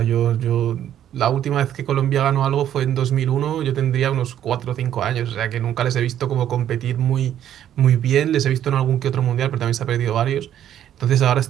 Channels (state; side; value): quieter; left; 10.8 dB